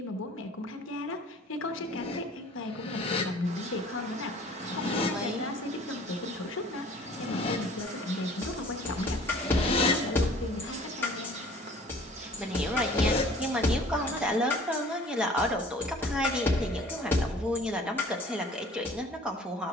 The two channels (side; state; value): both; normal; correlation 0.50